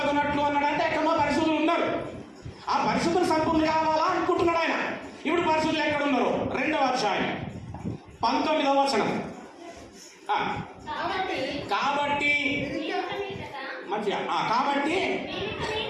అన్నాడంటే ఎక్కడో పరిశుద్ధులు ఉన్నారు. ఆ పరిశుద్ధులు సంపూర్ణులు కావాలా అనుకుంటున్నాడు ఆయన. ఇప్పుడు పరిశుద్ధులు ఎక్కడ ఉన్నారు? 2వ అధ్యాయం 19వ వచనం. కాబట్టి మంచిగా కాబట్టి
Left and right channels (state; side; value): identical; both; correlation 1.00